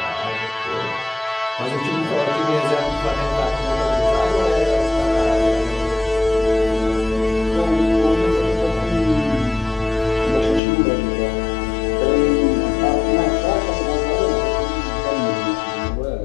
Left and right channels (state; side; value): drops out; right; at 10.6 s